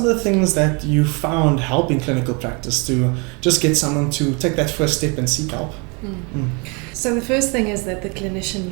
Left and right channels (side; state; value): left; quieter; 31.5 dB